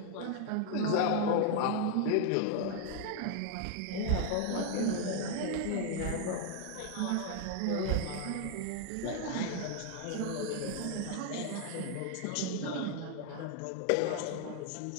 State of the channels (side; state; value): both; different; correlation 0.00